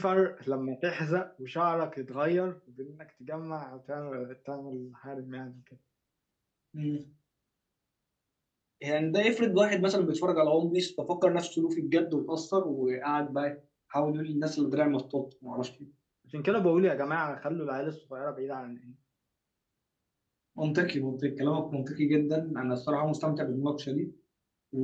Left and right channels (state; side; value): identical; both; correlation 1.00